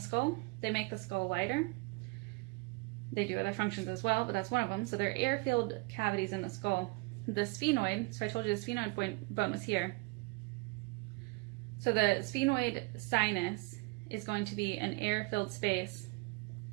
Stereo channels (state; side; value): quieter; left; 26.8 dB